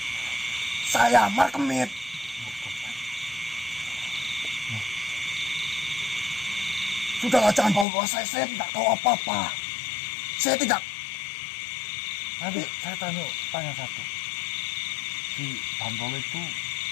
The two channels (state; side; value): drops out; right; at 7.9 s